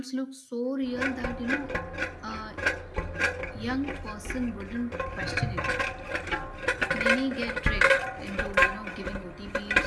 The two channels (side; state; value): both; identical; correlation 1.00